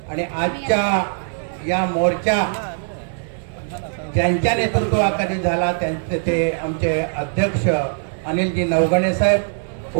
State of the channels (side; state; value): left; silent; digital silence